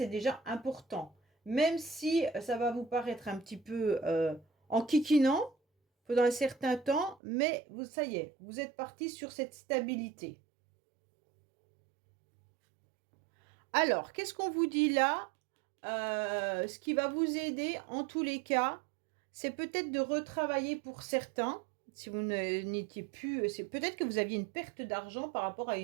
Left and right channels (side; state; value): left; drops out; at 7.2 s